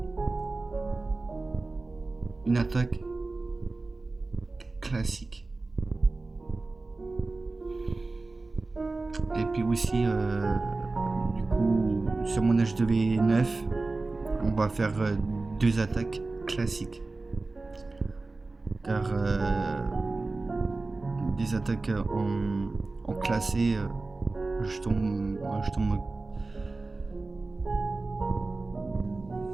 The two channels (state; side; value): quieter; left; 3.4 dB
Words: une attaque classique. Et puis aussi, du coup, sur mon HDV9, on va faire 2 attaques classiques. Car des attaques en classé, je tombe